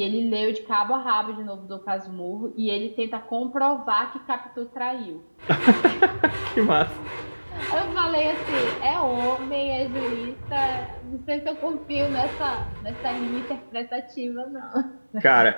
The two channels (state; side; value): inverted; both; correlation -1.00